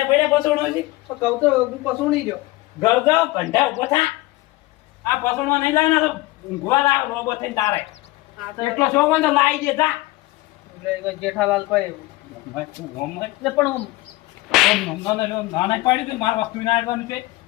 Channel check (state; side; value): quieter; right; 19.8 dB